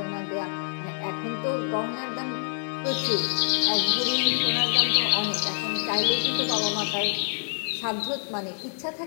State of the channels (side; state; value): right; silent; digital silence